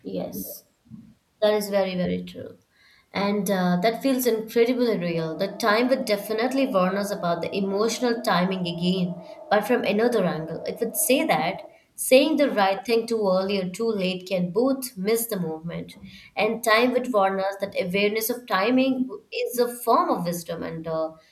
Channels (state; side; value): identical; both; correlation 1.00